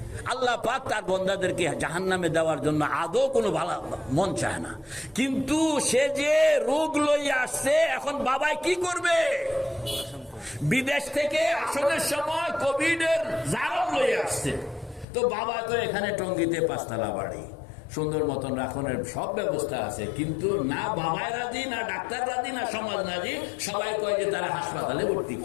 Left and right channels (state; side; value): drops out; right; at 15.1 s